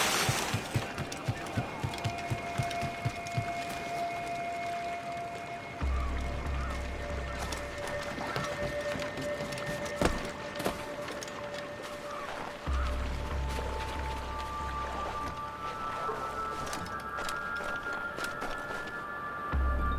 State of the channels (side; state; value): both; identical; correlation 1.00